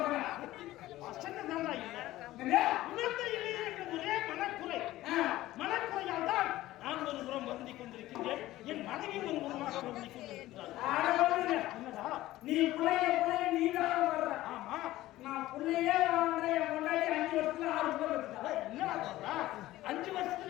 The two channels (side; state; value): right; quieter; 16.1 dB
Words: ஒரே மனக்குறையால் தான் நான் ஒரு புறம் வருந்திக் கொண்டிருக்கின்றேன். என் மனைவி ஒரு புறமாக வருந்திக் கொண்டிருக்கிறார். என்னடா நீ ஆமா, நான் பிள்ளையே முன்னாடி 5 வருஷத்துல 6 புள்ள இருக்குதா? என்னடா சொல்றா? 5